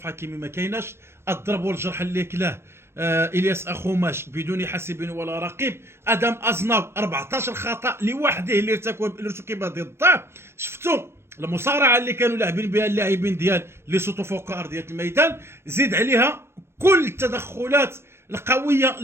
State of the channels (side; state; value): left; late; 0.12 ms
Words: حكيمي ما كايناش، الضرب والجرح اللي كلاه الياس اخوماش بدون حاسب ولا رقيب، ادم ازناو 14 خطا لوحده اللي ارتكب ضده. شفتوا المصارعه اللي كانوا لاعبين بها اللاعبين ديال لي سوتو فوق ارضيه الميدان، زيد عليها كل التدخلات القويه